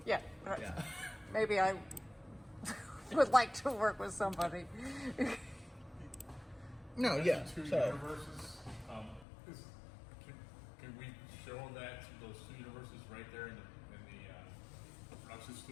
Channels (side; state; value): right; drops out; at 9.2 s